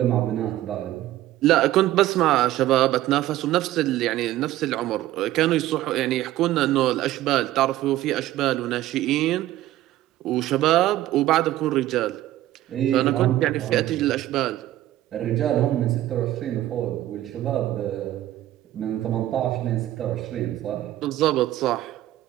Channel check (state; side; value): quieter; left; 14.5 dB